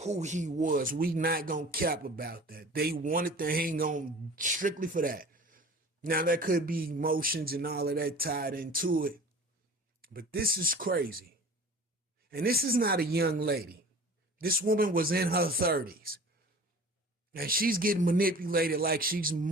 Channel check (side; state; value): both; normal; correlation 0.42